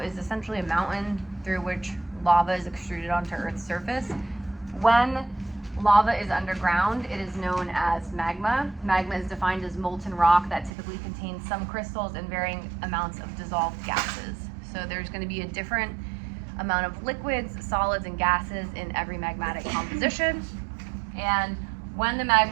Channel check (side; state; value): left; drops out; at 10.7 s